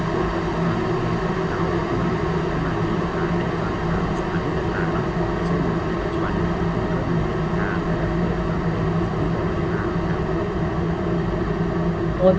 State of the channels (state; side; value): identical; both; correlation 1.00